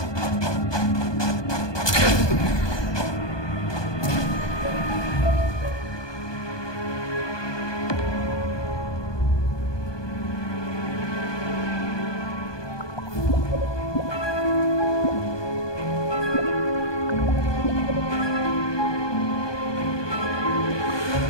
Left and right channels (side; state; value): right; late; 1.2 ms